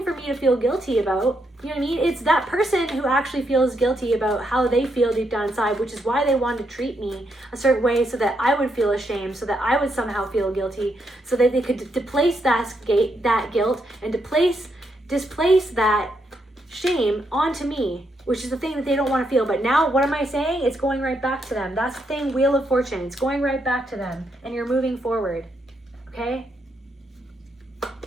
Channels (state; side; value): normal; both; correlation 0.79